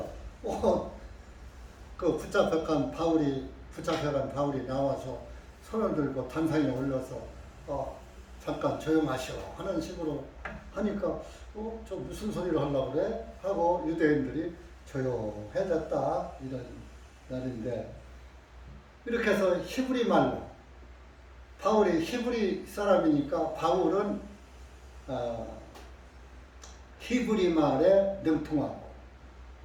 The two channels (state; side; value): identical; both; correlation 1.00